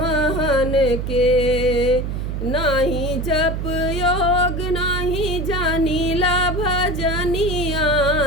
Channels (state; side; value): noise; right; hum, 3 dB below the sound